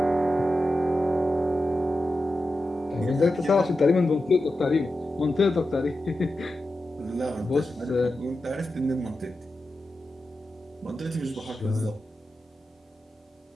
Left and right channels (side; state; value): both; normal; correlation 0.91